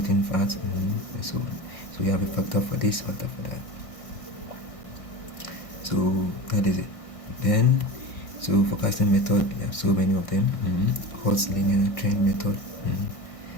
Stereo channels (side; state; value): right; late; 1.6 ms